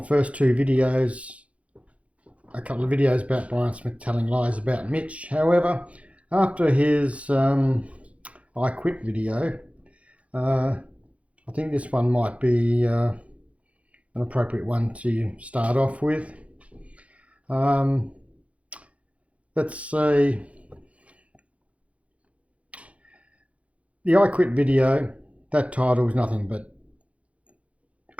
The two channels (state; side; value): late; left; 0.064 ms